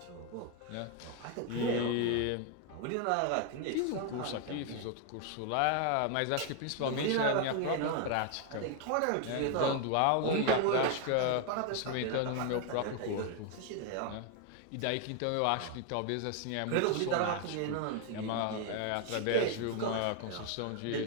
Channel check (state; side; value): different; both; correlation 0.01